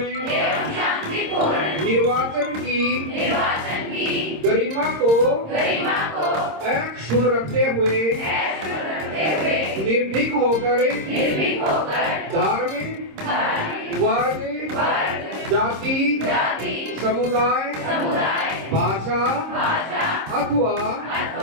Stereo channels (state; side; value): late; left; 26 ms